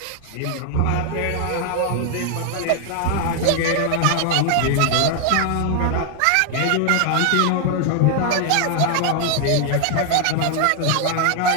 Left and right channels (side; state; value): both; different; correlation 0.00